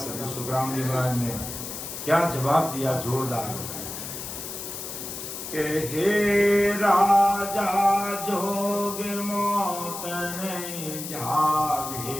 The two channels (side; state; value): left; noise; hiss, 8 dB below the sound